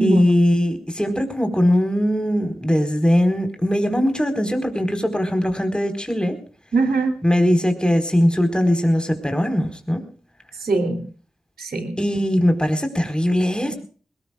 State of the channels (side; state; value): both; normal; correlation 0.95